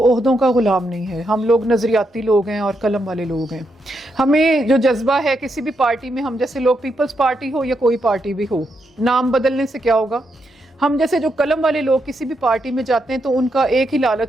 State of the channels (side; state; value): both; normal; correlation 0.81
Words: का ग़ुलाम नहीं है। हम लोग नज़रियाती लोग हैं और कलम वाले लोग हैं। हमें जो जज्बा है किसी भी पार्टी में, हम जैसे लोग, पीपल्स पार्टी हो या कोई पार्टी भी हो, नाम बदलने से क्या होगा, हम जैसे जो कलम वाले लोग किसी भी पार्टी में जाते हैं तो उनका एक ही